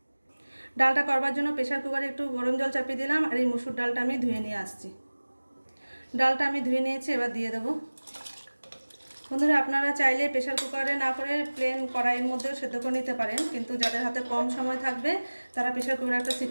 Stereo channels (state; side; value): inverted; both; correlation -1.00